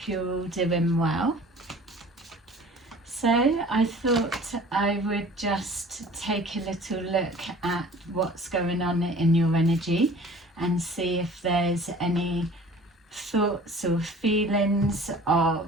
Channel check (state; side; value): normal; both; correlation 0.46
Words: you're all doing well. So I thought I would just take a little look at what's going on in your energy and see if there's any thoughts or feelings of